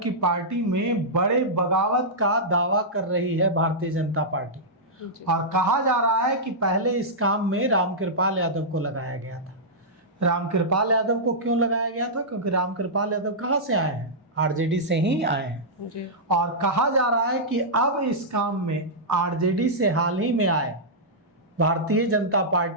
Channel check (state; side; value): normal; both; correlation -0.12